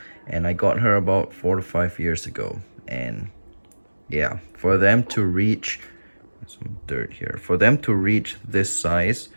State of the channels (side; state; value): both; inverted; correlation -1.00